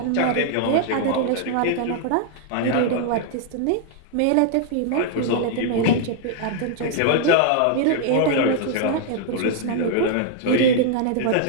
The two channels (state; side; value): different; both; correlation -0.01